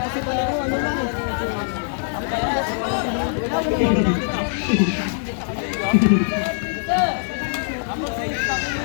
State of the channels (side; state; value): right; silent; 64 dB below the other